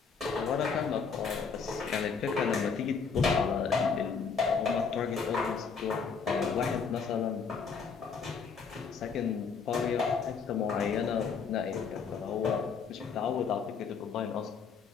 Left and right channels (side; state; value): right; quieter; 5.7 dB